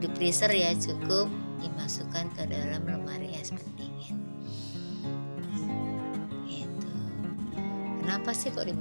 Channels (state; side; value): inverted; both; correlation -1.00